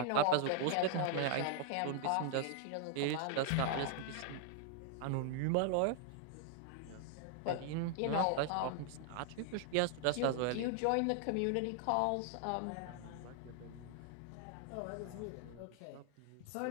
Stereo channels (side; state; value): both; different; correlation 0.00